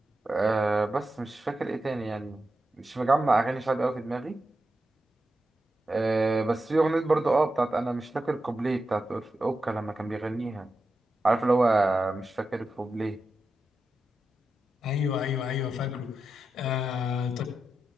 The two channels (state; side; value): normal; both; correlation 0.89